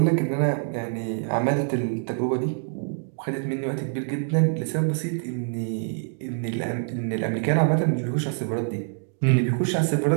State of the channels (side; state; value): left; silent; digital silence